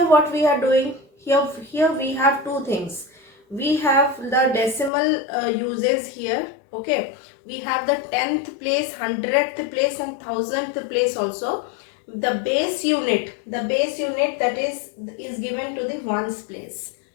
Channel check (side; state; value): right; drops out; at 4.9 s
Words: what we are doing, here we have two things. We have the decimal uses here. Okay, we have the 10th place, 100th place and 1000th place also. The base unit that is given to the ones place.